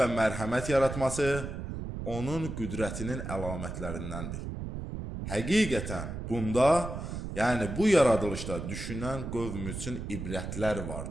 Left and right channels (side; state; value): right; noise; rumble, 6 dB below the sound